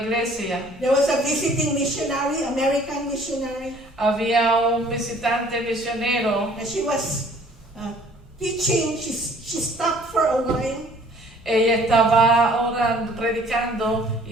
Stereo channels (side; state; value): both; normal; correlation 0.55